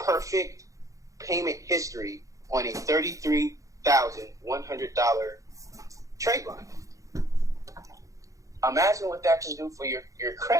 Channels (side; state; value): left; late; 0.16 ms